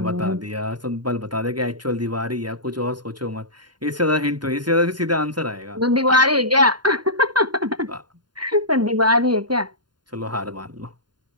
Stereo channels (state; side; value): late; left; 0.71 ms